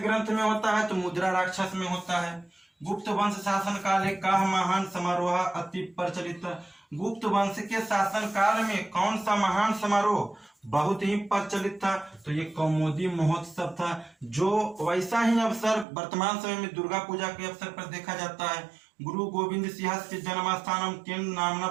ग्रंथ में होता है? तो मुद्रा राक्षस में होता है। गुप्त वंश शासन काले का महान समारोह अति प्रचलित। गुप्त वंश के शासन काल में कौन सा महान समारोह बहुत ही प्रचलित था? तो ये कौमुदी महोत्सव था, जो वैसा ही अवसर वर्तमान समय में दुर्गा पूजा के अवसर पर देखा जाता है। गुरु गोविंद सिंह के जन्म स्थानम केन नामना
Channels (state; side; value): drops out; left; at 15.9 s